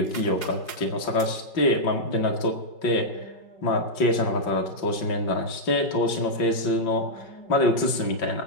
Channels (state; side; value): late; right; 5.3 ms